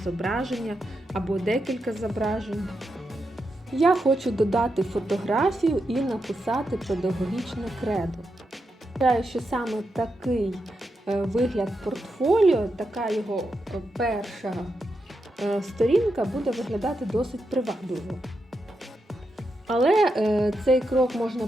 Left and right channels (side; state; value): both; normal; correlation 0.85